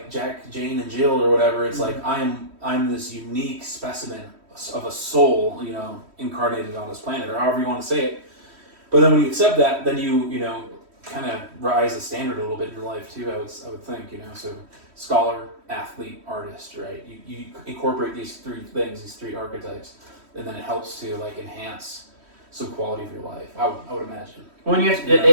Jack, Jane, and Jill or whatever. It's like I'm this unique specimen of a soul, you know, incarnated on this planet, or however you want to say it. But then when you accept that, then you know, kind of rise the standard a little bit in your life too. I would think, you know. So scholar, athlete, artist, right? You incorporate these 3 things, these 3 archetypes, and then it helps to like enhance some quality of your life. I would imagine. When you have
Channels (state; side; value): late; left; 3.1 ms